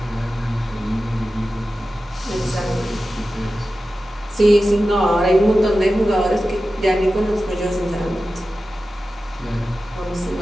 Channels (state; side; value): normal; both; correlation 0.94